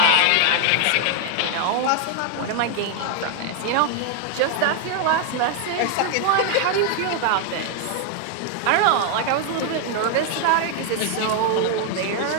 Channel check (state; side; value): different; both; correlation 0.00